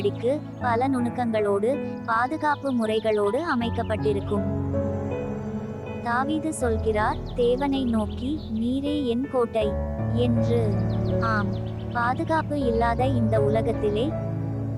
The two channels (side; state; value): both; identical; correlation 1.00